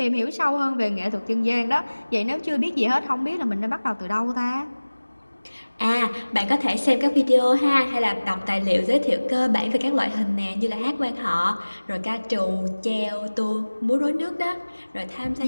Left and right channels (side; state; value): both; inverted; correlation -1.00